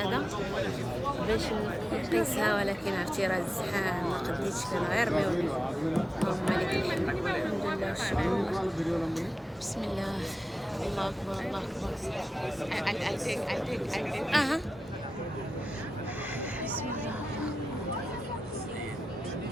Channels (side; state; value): both; normal; correlation 0.93